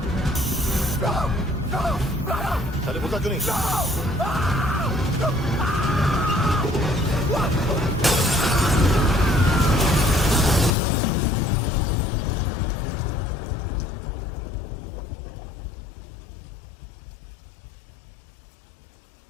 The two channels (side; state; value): right; drops out; at 10.8 s